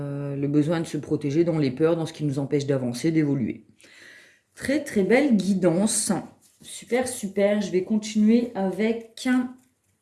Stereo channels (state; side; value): identical; both; correlation 1.00